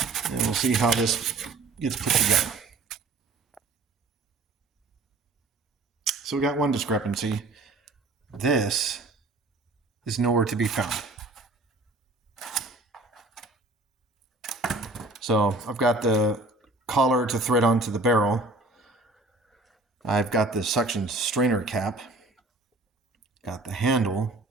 and we'll see how this gets put together. So we got one discrepancy. This is nowhere to be found. So I've got the collar to thread onto the barrel. I've got the suction strainer cap. Got the handle,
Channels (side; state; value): left; quieter; 3.2 dB